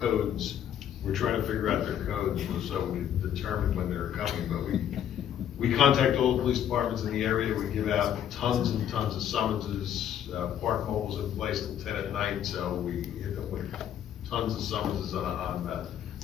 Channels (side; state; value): right; quieter; 9.9 dB